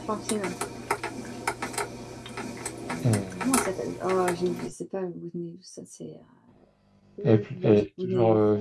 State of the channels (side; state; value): both; identical; correlation 1.00